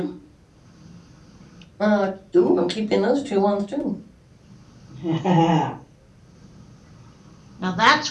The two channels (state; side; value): identical; both; correlation 1.00